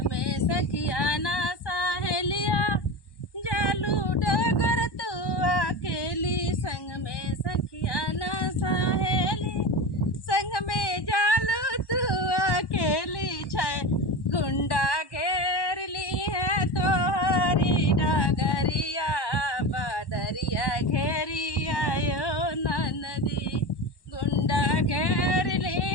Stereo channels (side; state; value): right; late; 1.1 ms